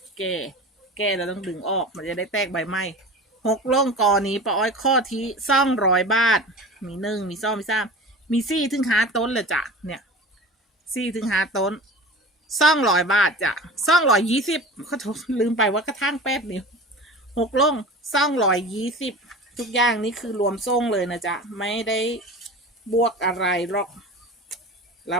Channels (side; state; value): both; normal; correlation 0.35